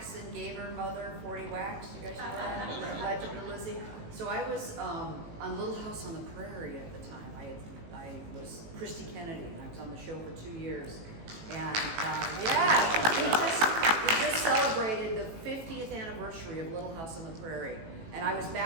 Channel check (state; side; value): late; left; 18 ms